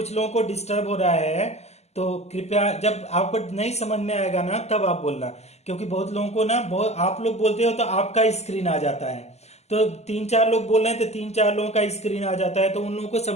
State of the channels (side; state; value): right; late; 0.32 ms